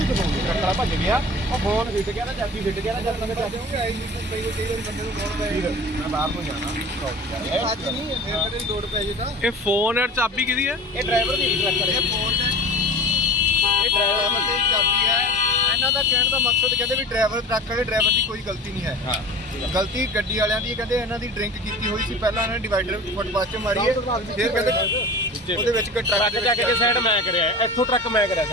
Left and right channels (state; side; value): normal; both; correlation 0.37